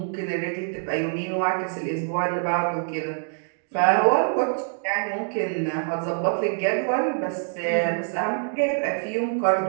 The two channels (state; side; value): silent; left; digital silence